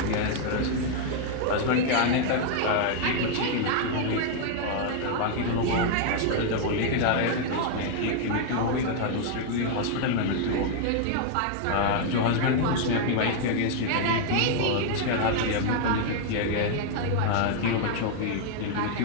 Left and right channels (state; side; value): different; both; correlation 0.00